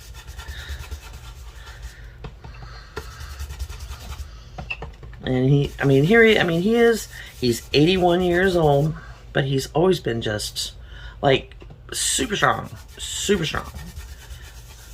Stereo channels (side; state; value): both; identical; correlation 1.00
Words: And he's 81 years old, but he's always been just like super strong,